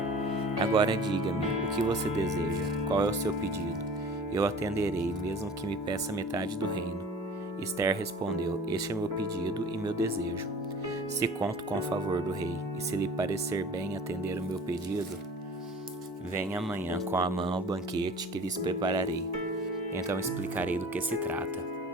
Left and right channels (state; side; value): normal; both; correlation 0.43